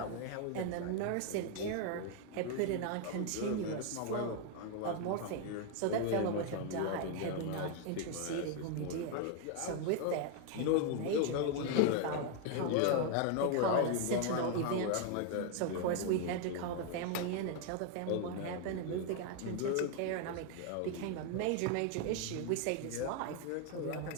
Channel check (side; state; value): both; different; correlation 0.01